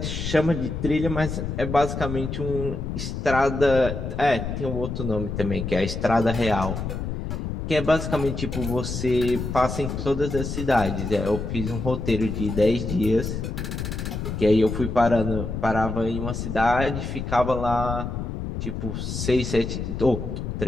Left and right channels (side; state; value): left; noise; rumble, 4 dB below the sound